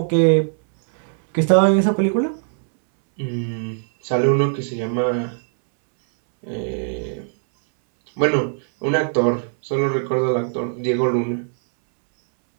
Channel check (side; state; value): left; silent; 65 dB below the other